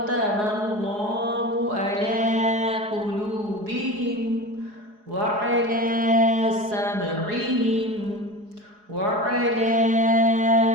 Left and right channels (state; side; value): late; left; 4.8 ms